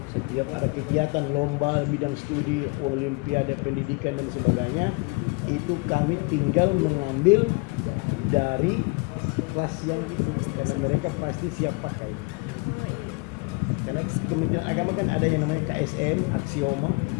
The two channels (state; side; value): quieter; right; 29.8 dB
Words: Setiap ada kegiatan lomba bidang studi, olimpiade pendidikan dan sebagainya, itu kami tinggal mengambil dari kelas yang itu, karena mereka pasti siap pakai. Karena Kementerian Agama kan ada yang namanya KSM, aksioma,